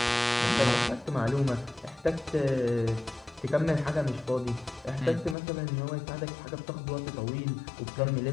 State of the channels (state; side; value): drops out; right; at 5.4 s